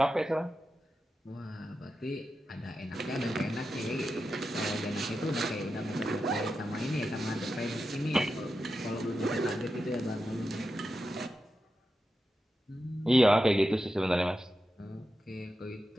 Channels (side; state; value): both; normal; correlation 0.90